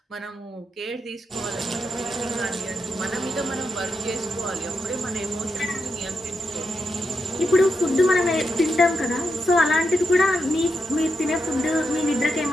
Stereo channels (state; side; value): normal; both; correlation 0.84